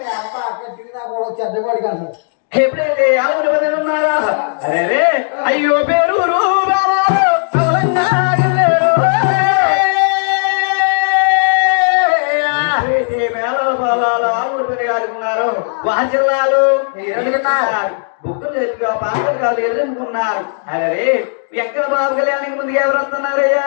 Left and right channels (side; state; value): right; silent; digital silence